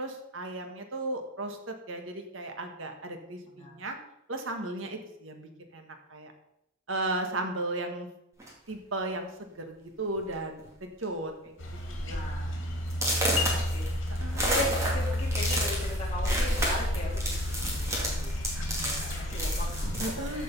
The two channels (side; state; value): both; normal; correlation 0.38